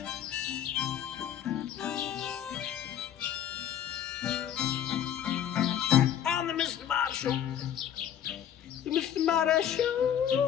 On the Mr. Marty Show. The Mr. Marty Show.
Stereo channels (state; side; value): quieter; right; 9.8 dB